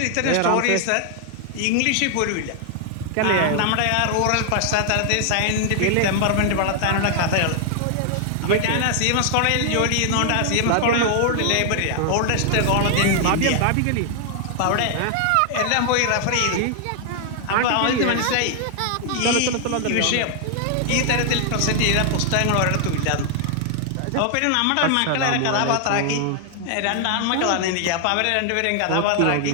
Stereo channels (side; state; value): both; different; correlation 0.00